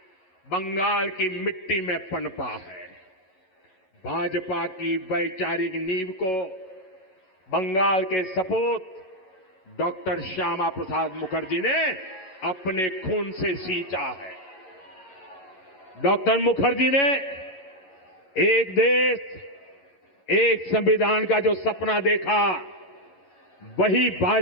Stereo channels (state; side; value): late; right; 11 ms